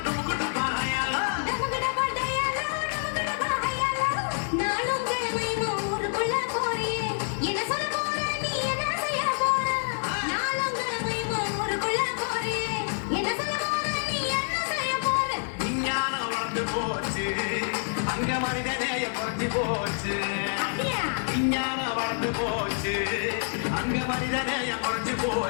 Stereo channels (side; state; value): right; silent; digital silence